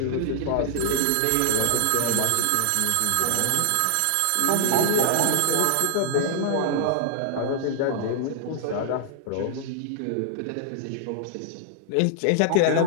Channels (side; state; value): both; different; correlation -0.01